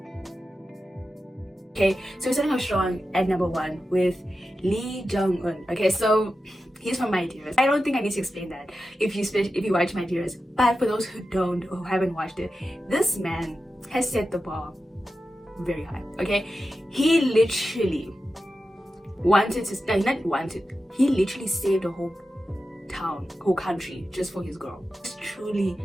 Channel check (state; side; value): normal; both; correlation 0.92